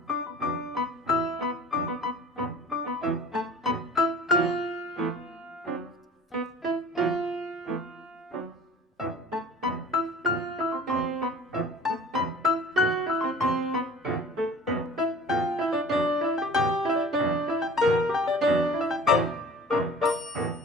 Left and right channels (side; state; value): both; normal; correlation 0.45